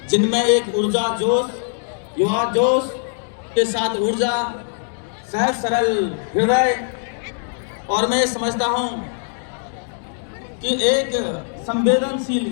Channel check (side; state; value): right; silent; digital silence